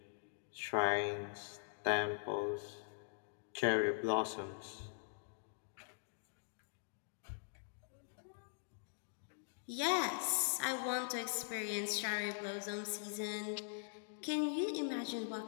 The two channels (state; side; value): silent; right; digital silence